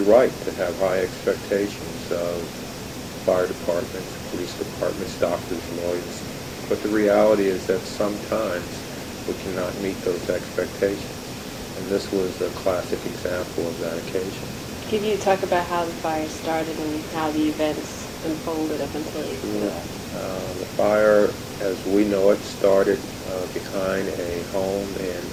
right to have high expectations of fire departments, police departments, doctors, lawyers. But the reality is that sometimes we cannot meet those expectations. And this was a classic example of that occasion. Can you talk about how the fire started and how the events unfolded up until it? Sure. The fire, as we know it, started behind a home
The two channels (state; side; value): identical; both; correlation 1.00